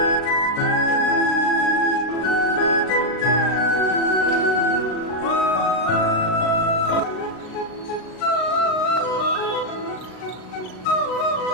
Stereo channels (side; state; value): right; late; 38 ms